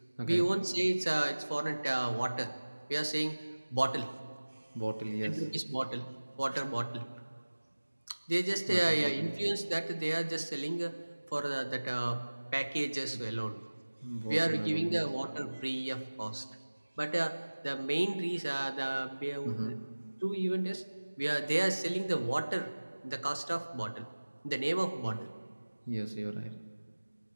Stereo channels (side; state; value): both; inverted; correlation -1.00